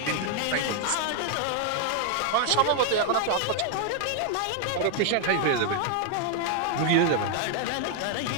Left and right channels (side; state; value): both; different; correlation 0.01